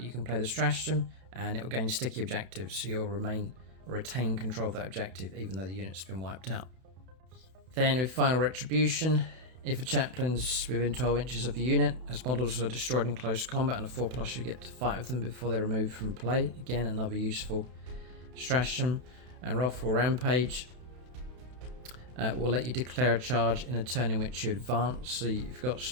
can play the stratagem and it will gain sticky objectives, so you'll retain control of that objective even though the unit's been wiped out. Then with Final Retribution, if a chaplain's within 12 inches of the unit, as models are destroyed in close combat and a 4+, you get to fight with them before they're removed from play. Again, another useful stratagem. And Wrathful Rampage will let you declare a charge in a turn in which you advance, so you've got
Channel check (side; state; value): left; late; 32 ms